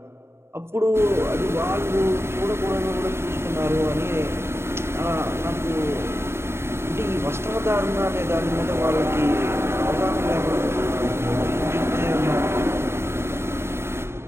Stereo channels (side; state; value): left; late; 0.12 ms